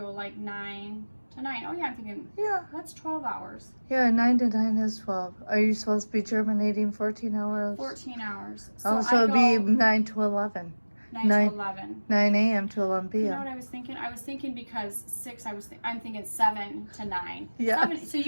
like 9 to 9. Oh yeah, I'm thinking, Yeah. that's 12 hours. Yeah, 9 to 9 is 12. Are you supposed to be germinating 14 hours? 14 hours. Oh, so it'd be 9 to 11. 9 to 11. 9 a.m. to 11 p.m. You know what I was thinking? I was thinking because 6, I'm thinking 7 to 9. Yes. 7, so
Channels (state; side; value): inverted; both; correlation -1.00